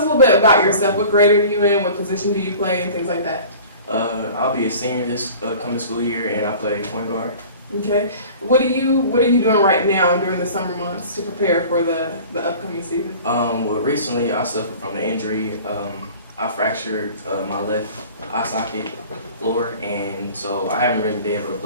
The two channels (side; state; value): both; inverted; correlation -0.43